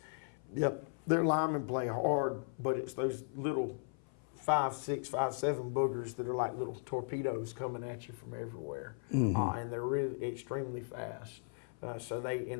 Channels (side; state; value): right; silent; 53 dB below the other